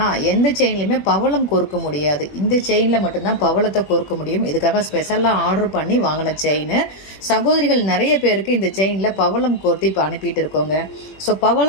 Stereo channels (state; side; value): late; right; 21 ms